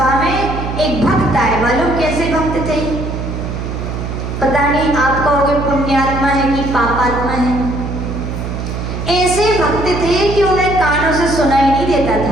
में एक भक्त आए। मालूम कैसे भक्त थे? पता नहीं आप कहोगे पुण्यात्मा है कि पापात्मा है। ऐसे भक्त थे कि उन्हें कानों से सुनाई नहीं देता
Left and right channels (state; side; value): noise; right; hum, 5 dB below the sound